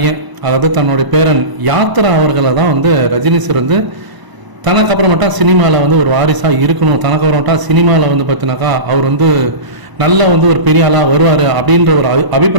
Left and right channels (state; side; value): late; left; 1.0 ms